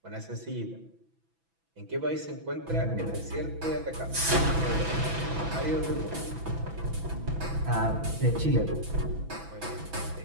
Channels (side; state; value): left; late; 6.0 ms